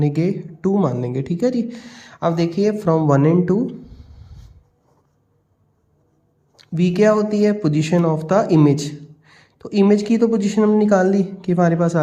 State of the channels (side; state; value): both; identical; correlation 1.00